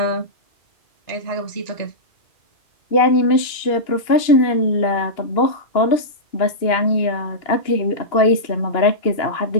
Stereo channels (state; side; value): late; right; 2.8 ms